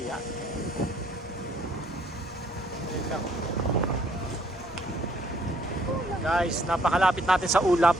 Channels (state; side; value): normal; both; correlation 0.64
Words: Ayun lang. Guys, napakalapit natin sa ulap.